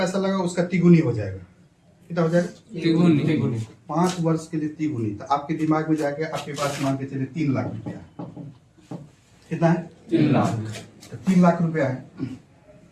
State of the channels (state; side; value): identical; both; correlation 1.00